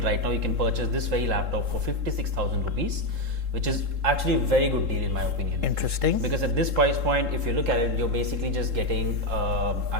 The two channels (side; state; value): left; late; 3.7 ms